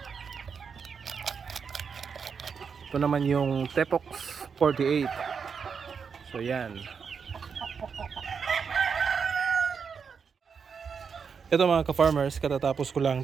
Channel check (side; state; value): left; quieter; 6.1 dB